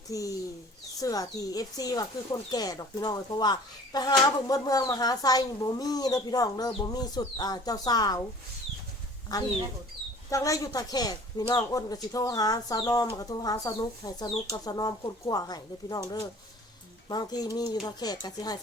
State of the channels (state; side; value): normal; both; correlation 0.47